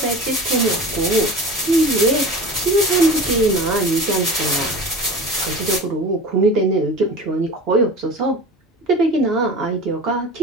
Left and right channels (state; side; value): normal; both; correlation 0.35